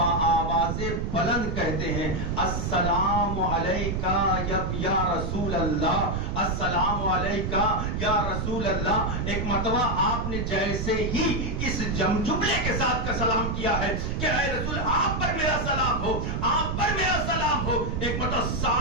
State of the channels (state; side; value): noise; right; rumble, 2 dB below the sound